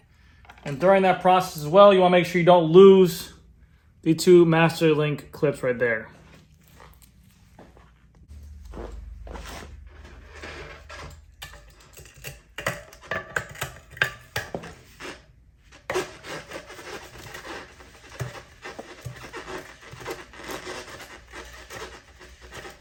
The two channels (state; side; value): identical; both; correlation 1.00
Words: And during that process as well, you want to make sure you don't lose the two master link clips right there.